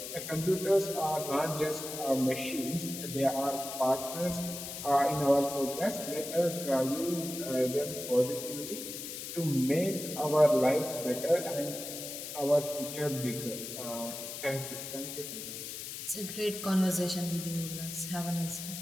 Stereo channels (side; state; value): left; noise; hiss, 8 dB below the sound